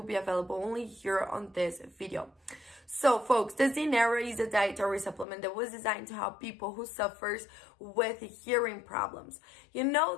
be available only here on this video. So, folks, the Zeneara is a dietary supplement that was designed to help people who suffers with hearing problems. You know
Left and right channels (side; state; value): right; drops out; at 5.2 s